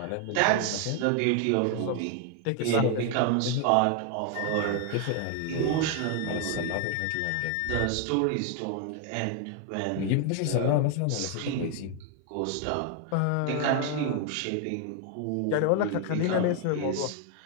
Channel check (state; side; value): different; both; correlation 0.01